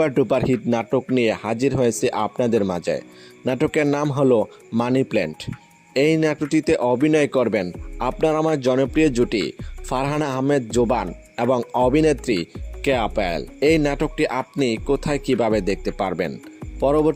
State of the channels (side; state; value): both; identical; correlation 1.00